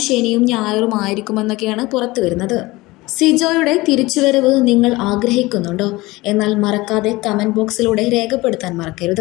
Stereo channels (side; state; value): right; quieter; 20.7 dB